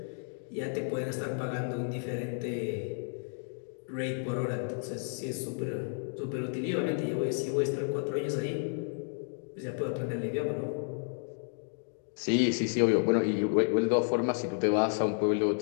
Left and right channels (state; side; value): silent; right; 57 dB below the other